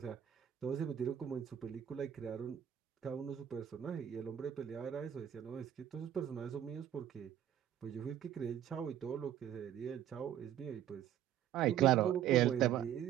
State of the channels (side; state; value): left; quieter; 10.6 dB